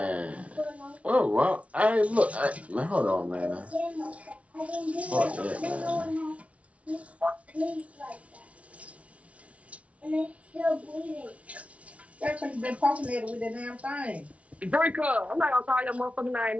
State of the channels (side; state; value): left; late; 0.064 ms